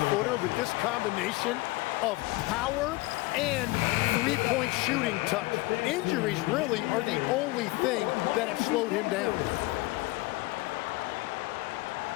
with this combination of power and three-point shooting touch. Injuries really are the only thing that have slowed him down.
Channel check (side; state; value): right; quieter; 21.3 dB